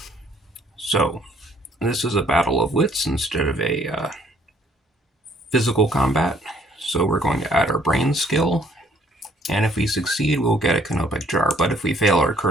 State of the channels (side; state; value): both; normal; correlation 0.62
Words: So, this is a battle of wits instead of a physical combat. So we're going to add our brain skill. And if we succeed, we'll get a Canopic Jar. But if we fail, our